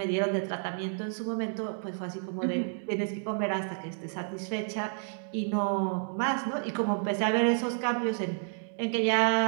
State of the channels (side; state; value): left; silent; digital silence